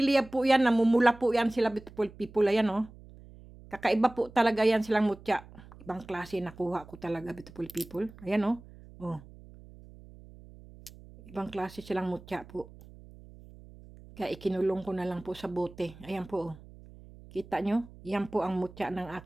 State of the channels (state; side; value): noise; right; hum, 20 dB below the sound